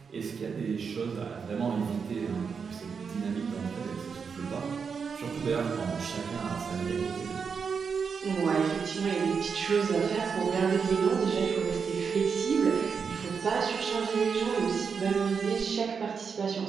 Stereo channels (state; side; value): quieter; left; 5.9 dB